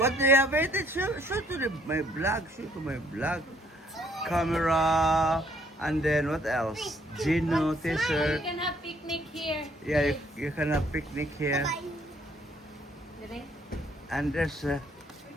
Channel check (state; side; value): normal; both; correlation 0.65